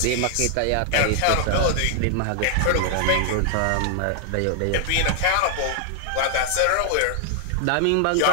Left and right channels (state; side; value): different; both; correlation 0.00